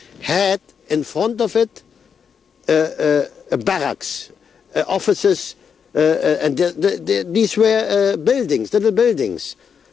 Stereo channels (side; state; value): right; quieter; 6.9 dB